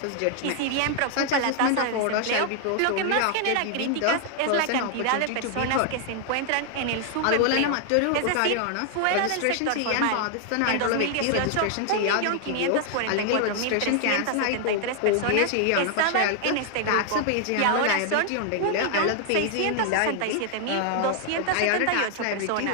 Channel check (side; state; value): both; different; correlation 0.00